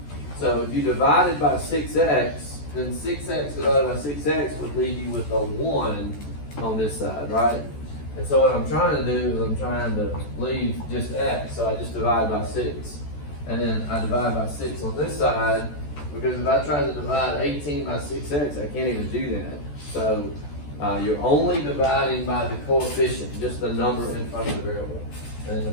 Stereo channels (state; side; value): late; right; 14 ms